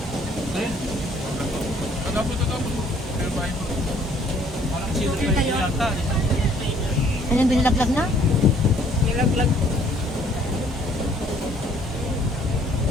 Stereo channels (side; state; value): both; normal; correlation 0.60